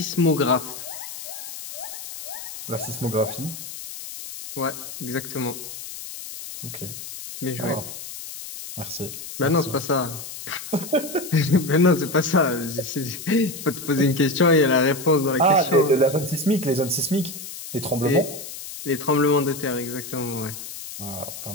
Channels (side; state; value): left; noise; hiss, 11 dB below the sound